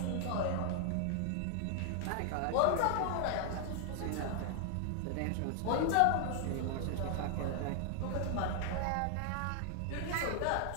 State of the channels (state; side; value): different; both; correlation 0.00